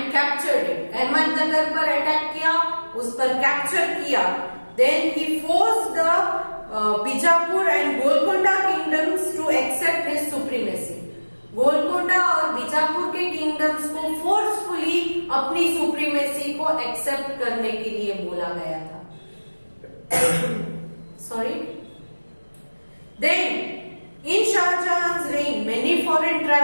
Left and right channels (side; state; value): both; inverted; correlation -1.00